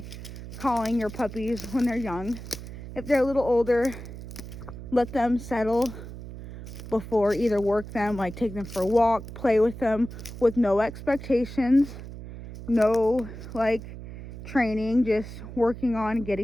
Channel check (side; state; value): right; noise; hum, 12 dB below the sound